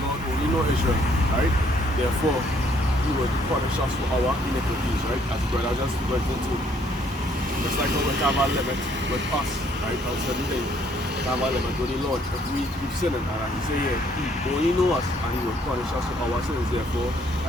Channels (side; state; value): both; normal; correlation 0.65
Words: Lord only know Israel, right? Therefore, he will punish us for our iniquities, right? As the brother just went into. Just like how we have a limit with us, right? On certain things. We have a limit with the Lord. If we keep sinning, and he say here, he only knows us and he will punish us for our sins. Therefore,